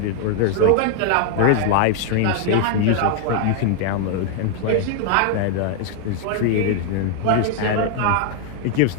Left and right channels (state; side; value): different; both; correlation 0.00